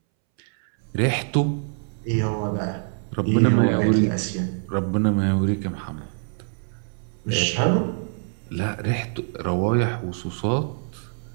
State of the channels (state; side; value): silent; left; 62 dB below the other